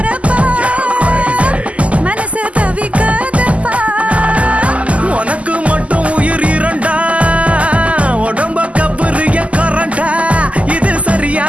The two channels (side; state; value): left; late; 0.066 ms